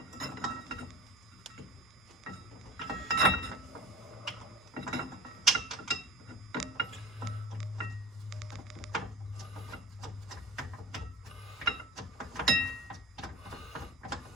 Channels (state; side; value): normal; both; correlation 0.38